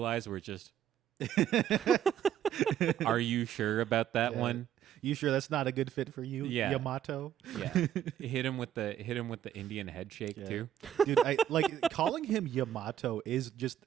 eyes where it's just. Are you sure about that one? You sure that's not a good fit for you, Yeah. Yamato? Yeah, hit him with the Indian head shake too. Dude, I like calling him Yamato is just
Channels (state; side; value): quieter; left; 10.4 dB